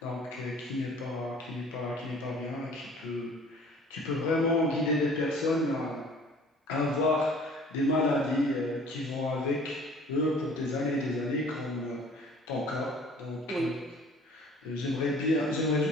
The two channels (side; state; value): both; normal; correlation 0.50